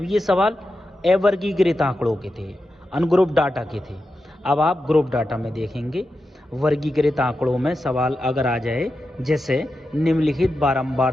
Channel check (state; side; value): normal; both; correlation 0.90